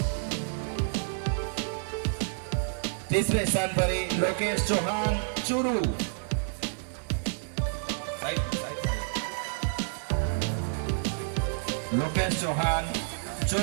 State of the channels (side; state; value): left; silent; digital silence